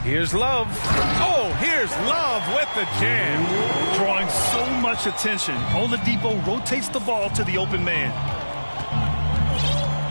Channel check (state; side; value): inverted; both; correlation -1.00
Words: Here's Love. Oh, here's Love with the jam. Drawing so much attention, Oladipo rotates the ball to the open man.